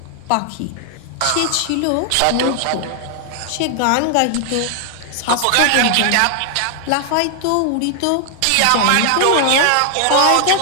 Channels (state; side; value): different; both; correlation 0.00